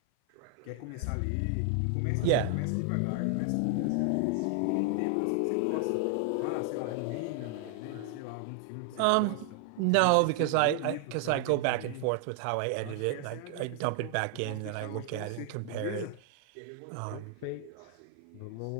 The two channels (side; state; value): both; different; correlation 0.00